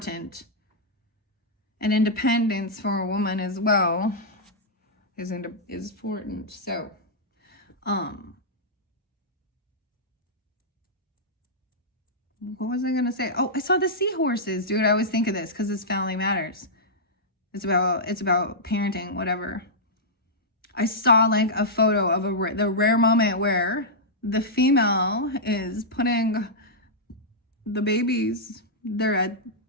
And independence for a woman as well is important. So, what was I going to say? Oh, I saw the seahorses. Dude, I always think of this because it's Family Matters. It's about parenting, whatever. I saw like a photo of the rare moment where the female is putting the babies, they're at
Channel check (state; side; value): normal; both; correlation -0.11